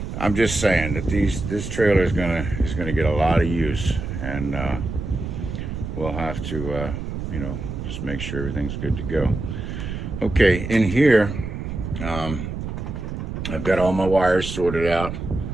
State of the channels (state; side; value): noise; right; rumble, 6 dB below the sound